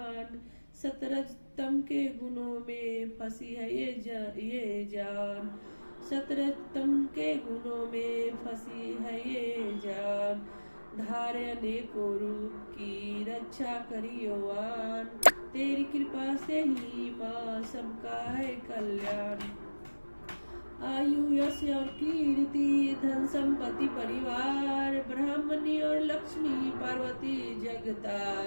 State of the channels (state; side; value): inverted; both; correlation -1.00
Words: सतरजतम के गुणों में फंसी है ये जान, सतरजतम के गुणों में फंसी है ये जान। धारे अनेकों रूप की रक्षा करियोवान, तेरी कृपा से ही माँ सबका है कल्याण। आयु यश और कीर्ति धन संपत्ति परिवार, ब्राह्मणी और लक्ष्मी पार्वती